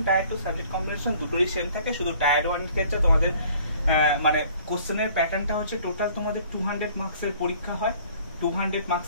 tyre 2 subject combination দুটোই সেম থাকে। শুধু টায়ার 1 এর ক্ষেত্রে তোমাদের মানে কোশ্চেনের প্যাটার্নটা হচ্ছে টোটাল তোমাদের 200 মার্কসের পরীক্ষা হয়। 200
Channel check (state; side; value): inverted; both; correlation -0.55